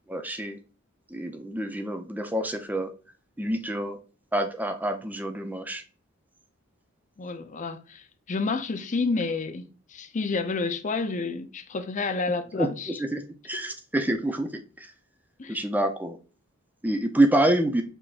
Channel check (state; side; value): normal; both; correlation 0.65